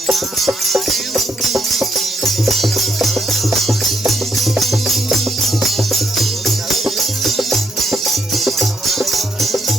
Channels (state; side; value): normal; both; correlation 0.75